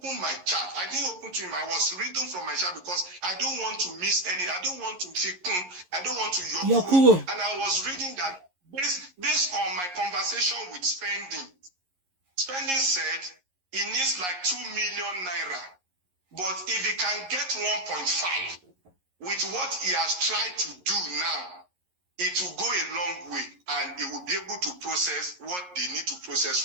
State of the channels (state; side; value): late; left; 11 ms